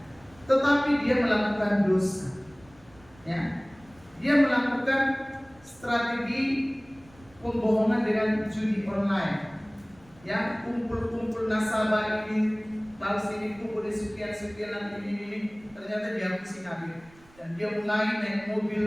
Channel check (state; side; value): noise; right; rumble, 26 dB below the sound